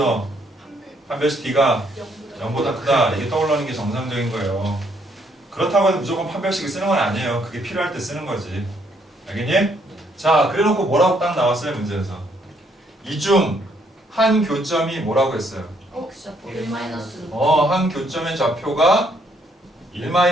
판별식 D가 0보다 크다. 이게 떠올르는 게 정상적인 거예요. 그렇다고 해서 무조건 판별식을 쓰는 건 아니에요. 그게 필요할 때 쓰는 거지. 알겠니? 자, 그래놓고 뭐라고 딱 나왔어요, 문제에서. 이 중 한 교점이 뭐라고 했어요? 1-루트. 한 교점의 좌표가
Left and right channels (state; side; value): normal; both; correlation 0.69